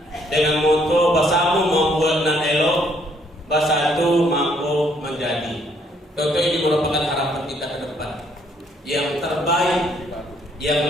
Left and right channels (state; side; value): normal; both; correlation 0.67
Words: dengan moto bersama membuat nan elok, bersatu mampu menjadi. Tentu ini merupakan harapan kita ke depan yang terbaik, yang